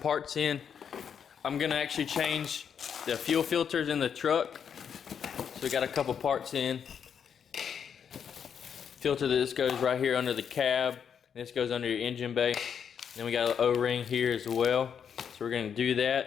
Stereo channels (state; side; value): quieter; right; 7.6 dB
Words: in. I'm gonna actually change the fuel filters in the truck. So we got a couple parts in. Filter this goes right here under the cab. This goes under your engine bay. Then we got an O-ring here as well. So we're gonna do